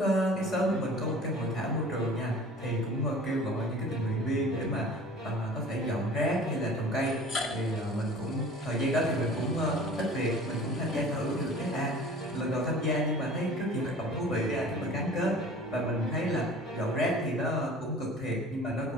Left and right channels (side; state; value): both; normal; correlation 0.45